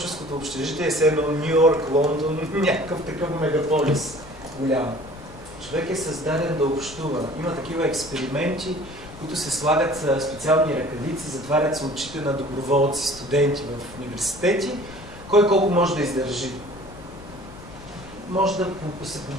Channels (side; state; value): left; noise; rumble, 18 dB below the sound